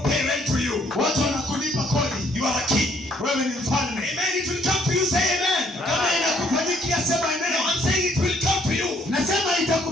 pay rent to you. Watu wanakulipa kodi. You are a king. Wewe ni mfalme. Amen. It will come to you. Say amen. Kama inakufanyikia sema No, amen. I'm saying it will come to you. Nasema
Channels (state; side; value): normal; both; correlation 0.66